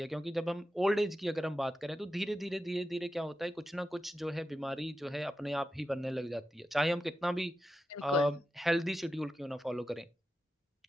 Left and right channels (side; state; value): both; normal; correlation 0.90